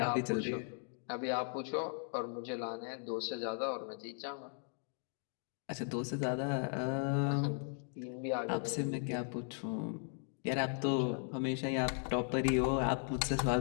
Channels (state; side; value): silent; right; 53 dB below the other